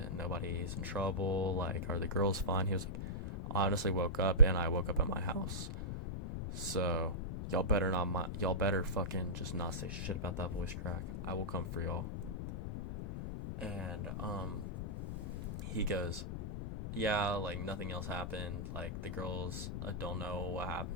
nobody's in trouble? Like, are the girls fine? He was like, I honestly woke up, and I woke up at my house. So, y'all better fucking just not say shit about that voice crack. I will come for y'all. And he goes, yeah, like nothing else happened. Like the girls don't know what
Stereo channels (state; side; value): noise; left; rumble, 5 dB below the sound